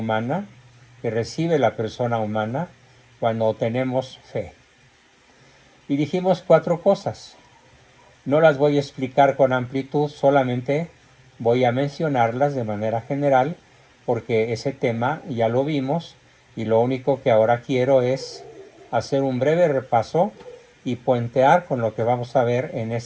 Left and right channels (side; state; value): both; identical; correlation 1.00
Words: que recibe la persona humana cuando tenemos fe. Y dijimos 4 cosas. No las voy a explicar con amplitud, solamente voy a mencionarlas de manera general, porque ese tema ya lo vimos y lo único que ahora quiero es hacer un breve repaso y puentear con lo que vamos a ver en